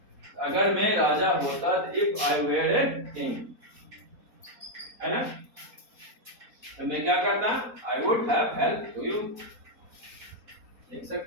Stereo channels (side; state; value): left; late; 4.2 ms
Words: अगर मैं राजा होता, if I were a king, है ना, तो मैं क्या करता? I would have help to you, लिख